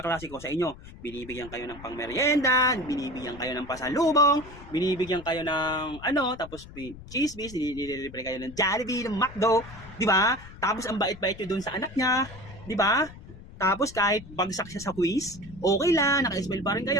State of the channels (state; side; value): noise; left; rumble, 17 dB below the sound